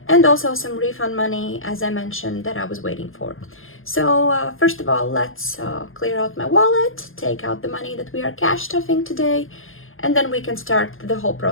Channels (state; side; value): late; right; 0.60 ms